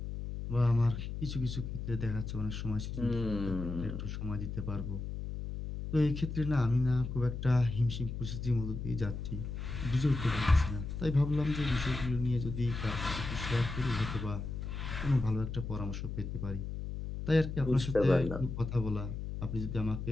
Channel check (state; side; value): noise; left; hum, 6 dB below the sound